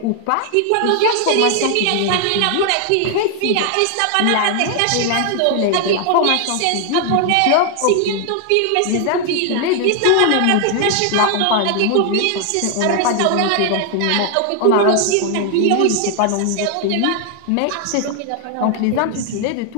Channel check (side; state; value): both; different; correlation 0.00